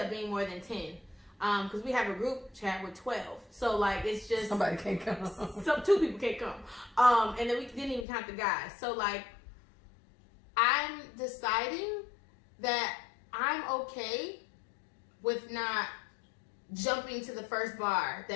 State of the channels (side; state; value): right; drops out; at 8.1 s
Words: being more than 10. Because we have a group chat with 12. So, like, it's just... Somebody can't come. 2 people can't come. And then we didn't even count the guys. So, like, I'm deciding that I'm okay with not jumping to the first bar